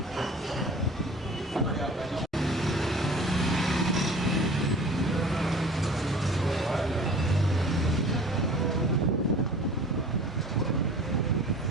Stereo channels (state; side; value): normal; both; correlation 0.44